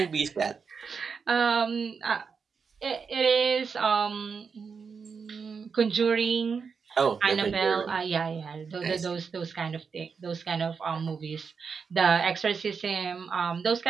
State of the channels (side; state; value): left; quieter; 5.7 dB